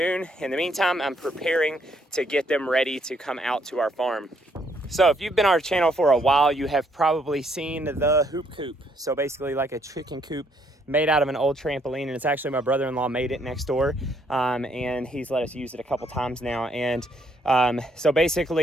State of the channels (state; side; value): normal; both; correlation 0.70